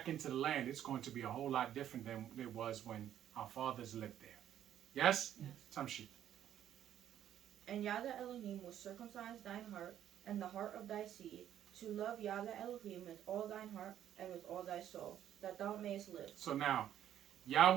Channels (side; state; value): left; quieter; 10.8 dB